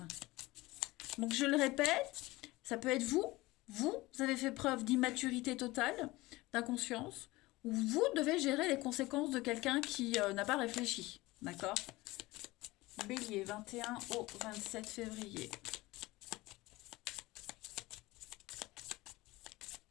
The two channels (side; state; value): right; quieter; 20.2 dB